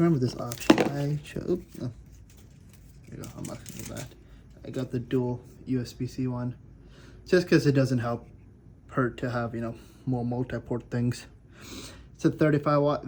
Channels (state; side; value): identical; both; correlation 1.00